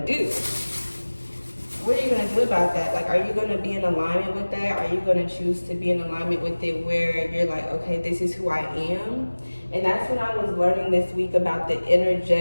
do? What are you gonna do about that? Like, are you gonna be in alignment with that? Are you gonna choose to be in alignment with it where you're like, okay, this is who I am? And that's when I was learning this week about the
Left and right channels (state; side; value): inverted; both; correlation -1.00